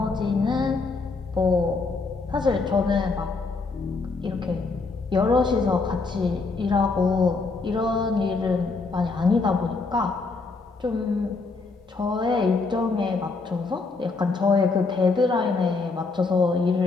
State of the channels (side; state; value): right; quieter; 4.0 dB